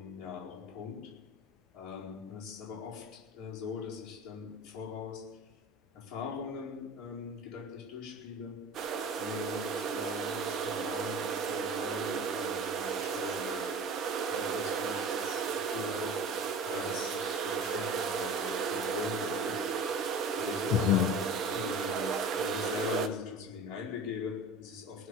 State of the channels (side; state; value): both; normal; correlation 0.36